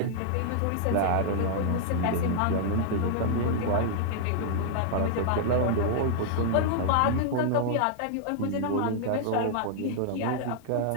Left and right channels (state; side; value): different; both; correlation -0.01